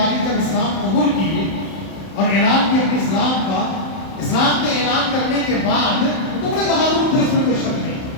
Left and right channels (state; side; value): late; right; 31 ms